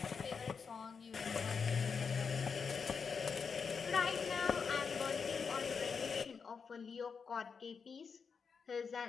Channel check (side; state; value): right; quieter; 5.8 dB